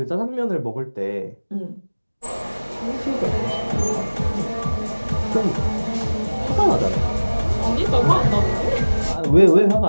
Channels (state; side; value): inverted; both; correlation -1.00